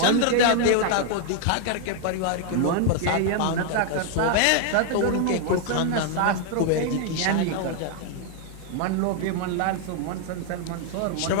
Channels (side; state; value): both; different; correlation 0.00